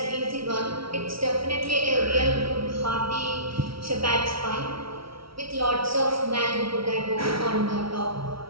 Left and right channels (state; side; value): late; left; 0.75 ms